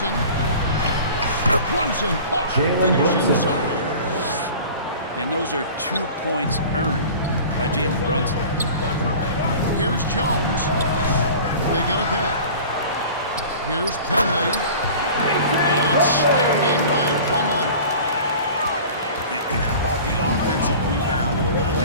Brunson, Jalen finish Brunson. inside. And those are 2 points earned by Jalen Brunson. Here's Jones. They get it back. Here's Plumlee. And it's slammed in by Plumlee. And how about the offensive rebound with a little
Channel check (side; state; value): both; inverted; correlation -0.41